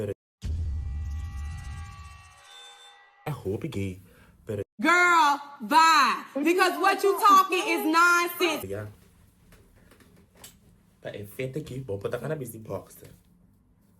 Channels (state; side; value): identical; both; correlation 1.00